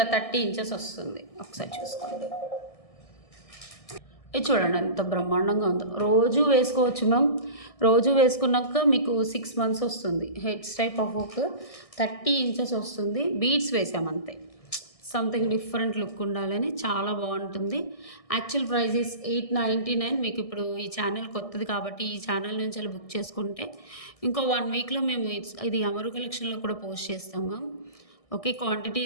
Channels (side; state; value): right; late; 1.6 ms